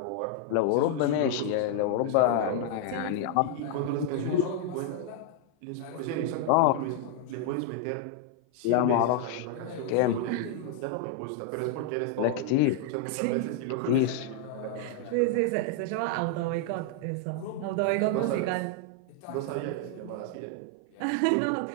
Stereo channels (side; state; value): both; different; correlation 0.00